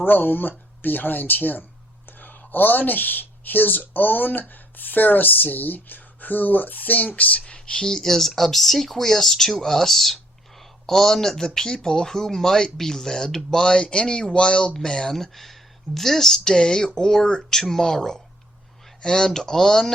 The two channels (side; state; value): both; normal; correlation 0.65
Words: behind him, on his own Pharisee, who thinks he is obsequious to us, on the people who might be led by any wild man this day or tomorrow, and